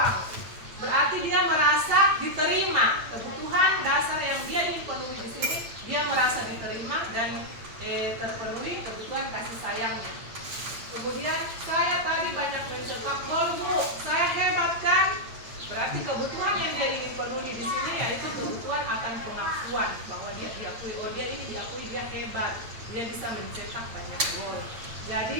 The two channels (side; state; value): left; late; 8.8 ms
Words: Berarti dia merasa diterima. Kebutuhan dasar yang dia ingin penuhi di sini, dia merasa diterima dan terpenuhi kebutuhan kasih sayangnya. Kemudian saya tadi banyak mencetak gol, Bu. Saya hebat kan? Berarti kebutuhan yang dia ingin penuhi di sini yaitu kebutuhan akan pengakuan bahwa dia diakui, oh dia ini diakui, dia hebat, dia bisa mencetak banyak gol.